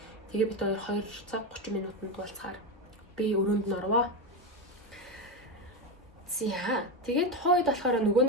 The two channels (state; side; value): normal; both; correlation 0.14